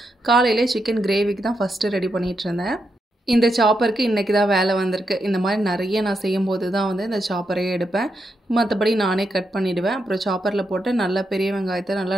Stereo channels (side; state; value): both; normal; correlation 0.83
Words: காலையிலே சிக்கன் கிரேவிக்கு தான் ஃபஸ்ட்டு ரெடி பண்ணிகிட்டு இருந்தேன். இந்த சாப்பருக்கு இன்றைக்கி தான் வேலை வந்திருக்கு. இந்த மாதிரி நிறைய நான் செய்யும்போது தான் வந்து இந்த சாப்பரையே எடுப்பேன். மற்றபடி நானே கட் பண்ணிவிடுவேன். அப்புறம் சாப்பரில் போட்டு நல்லா பெரிய வெங்காயத்தை